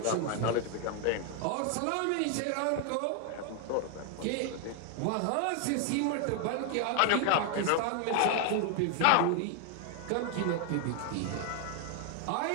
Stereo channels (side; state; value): both; different; correlation 0.00